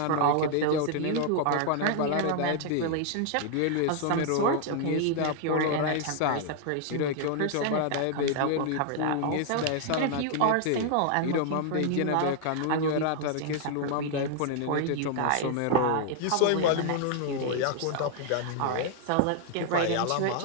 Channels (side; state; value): both; different; correlation 0.00